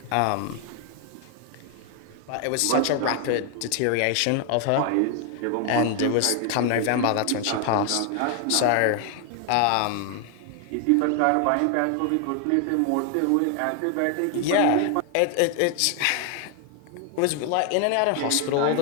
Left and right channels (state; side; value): different; both; correlation 0.00